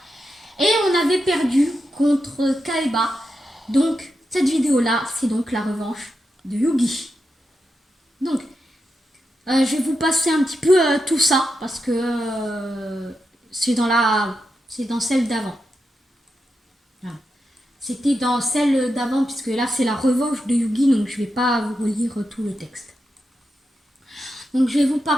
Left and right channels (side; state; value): both; normal; correlation 0.87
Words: Et on avait perdu contre Kaiba. Donc, cette vidéo-là, c'est donc la revanche de Yugi. Donc, je vais vous passer un petit peu tout ça parce que c'est dans celle d'avant. Voilà. C'était dans celle d'avant puisque là c'est la revanche de Yugi, donc je vais pas vous relire tout le texte. Donc je vais vous